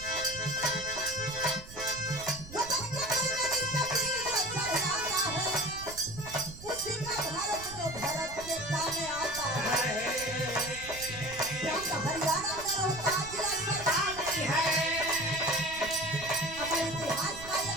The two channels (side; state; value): right; noise; rumble, 15 dB below the sound